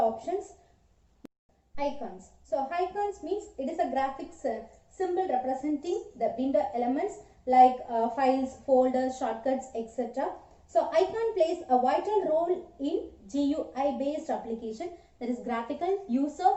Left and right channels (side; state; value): both; identical; correlation 1.00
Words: Icons. So, icons means it is a graphics symbol representing the window elements like files, folders, shortcuts, etc. So, icon plays a vital role in GUI based application, that is graphical user